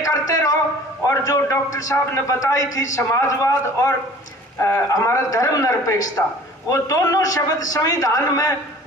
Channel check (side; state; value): both; normal; correlation 0.47